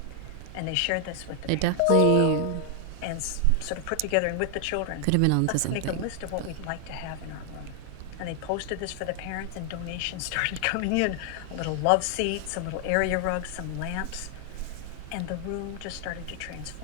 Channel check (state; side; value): different; both; correlation 0.00